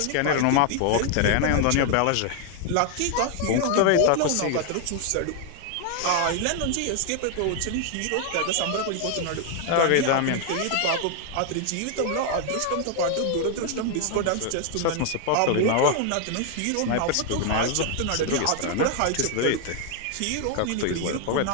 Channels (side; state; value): both; different; correlation 0.00